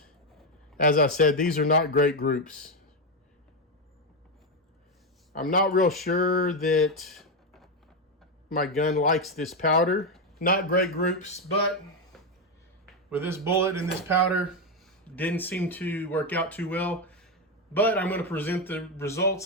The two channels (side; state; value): both; normal; correlation 0.07